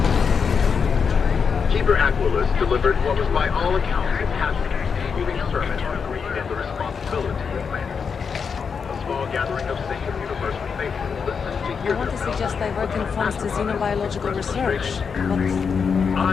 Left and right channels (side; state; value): right; quieter; 6.0 dB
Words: Keeper Aquilus delivered what was by all accounts a passionate, moving sermon on greed and the responsibility of man. A small gathering of sacred universal faithful listened to hear I want to suggest diverting funds to xenobiological research, but